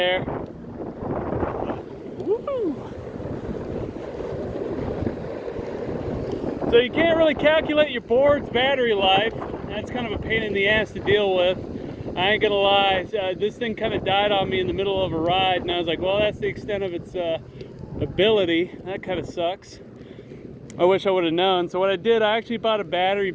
Woo! So you can't really calculate your board's battery life. That's kind of a pain in the ass to deal with. I ain't gonna lie, this thing kind of died on me in the middle of a ride, and I was like, well, that's the extent of its ability. That kind of sucks. I wish I would have known. So what I did, I actually bought a battery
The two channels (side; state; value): both; identical; correlation 1.00